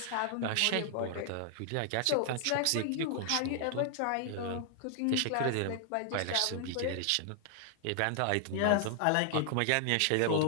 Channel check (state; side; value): different; both; correlation 0.00